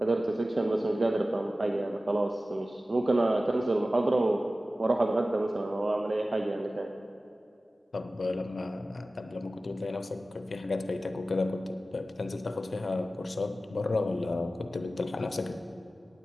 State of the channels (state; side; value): normal; both; correlation 0.95